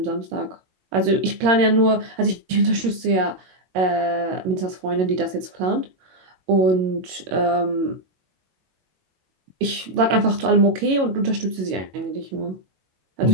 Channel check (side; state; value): left; late; 22 ms